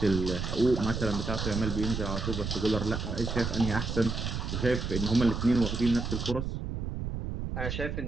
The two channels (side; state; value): right; noise; rumble, 3 dB below the sound